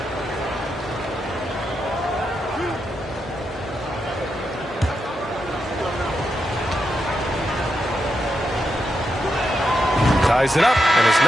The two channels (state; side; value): normal; both; correlation 0.84